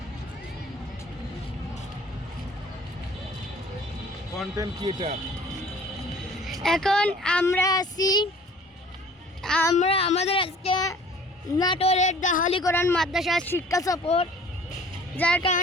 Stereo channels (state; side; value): normal; both; correlation 0.50